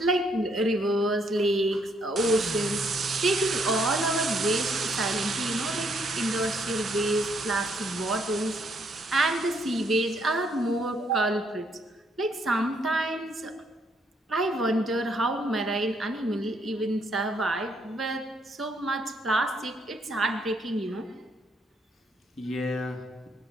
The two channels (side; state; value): both; normal; correlation 0.71